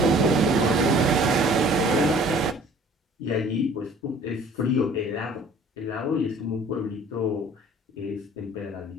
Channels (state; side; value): normal; both; correlation 0.52